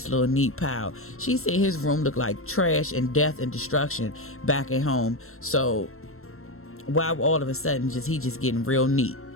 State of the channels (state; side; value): late; right; 0.62 ms